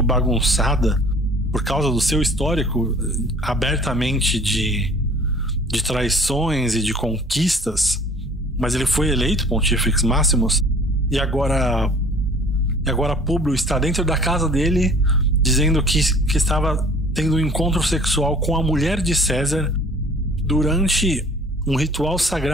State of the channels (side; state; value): both; normal; correlation 0.50